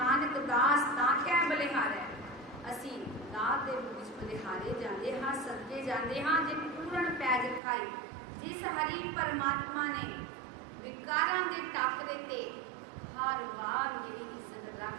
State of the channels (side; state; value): left; drops out; at 7.6 s